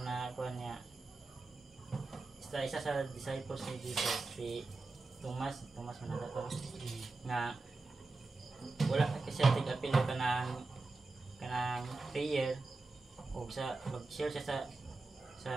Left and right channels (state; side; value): quieter; left; 3.5 dB